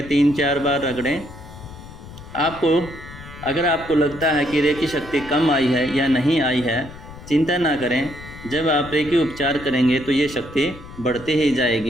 3-4 बार रगड़ें। अगर आपको लगता है कि रेकी शक्ति कम आई है या नहीं आई है, चिंता ना करें। जब आप रेकी उपचार करेंगे तो ये शक्ति बढ़ती ही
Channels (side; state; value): left; noise; rumble, 16 dB below the sound